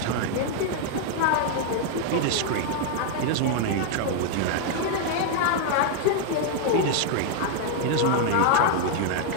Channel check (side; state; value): both; different; correlation 0.00